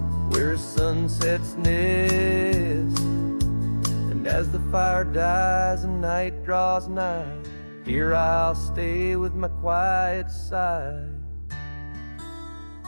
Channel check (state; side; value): inverted; both; correlation -1.00